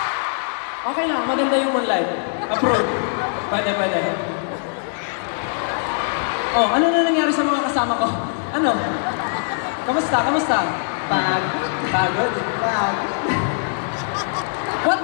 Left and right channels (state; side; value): silent; right; 65 dB below the other